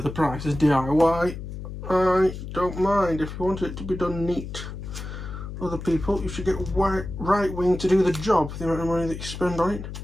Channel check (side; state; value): left; noise; hum, 9 dB below the sound